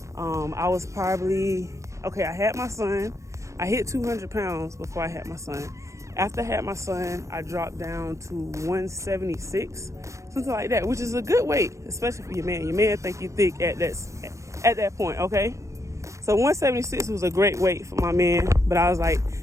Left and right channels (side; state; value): left; late; 0.15 ms